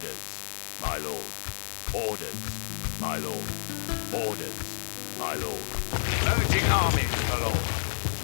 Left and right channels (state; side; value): silent; right; digital silence